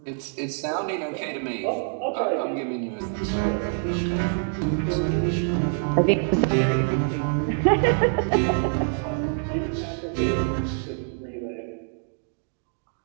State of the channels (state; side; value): silent; left; 61 dB below the other